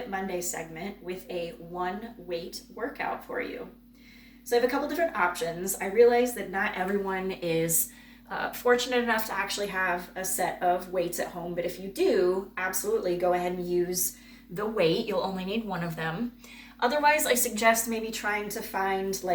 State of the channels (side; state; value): both; identical; correlation 1.00